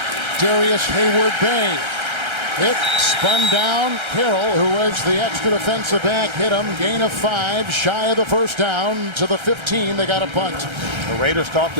Darius Hayward-Bay. Hit, spun down. Carroll, who was the extra defensive back, hit him. Gain of 5, shy of the 1st down. To the 15, they got a punt. The Raiders talked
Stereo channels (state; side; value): late; left; 1.3 ms